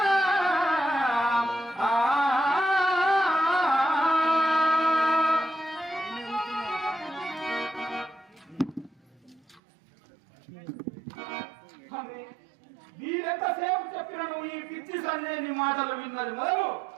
వీరెంతసేపు చెప్పినను ఈ పిచ్చి సంజయని మాటలు విన్నది మొదలు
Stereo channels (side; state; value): left; drops out; at 9.6 s